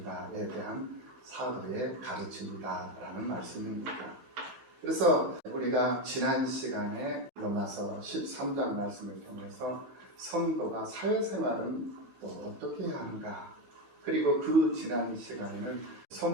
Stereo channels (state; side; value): late; left; 15 ms